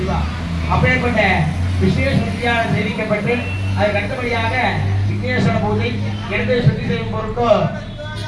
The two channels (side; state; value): both; identical; correlation 1.00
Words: அப்பேற்பட்ட விசேஷ சுத்தியாக தெரிவிக்கப்பட்டு அதுக்கு அடுத்தபடியாக விக்னேஸ்வர பூஜை, இடத்தை சுத்தி செய்யும் பொருட்டோ